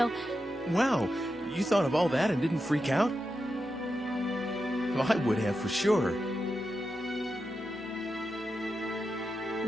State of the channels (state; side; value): normal; both; correlation 0.88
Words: Wow, you thought of all that and didn't freak out? Well, I would have for sure.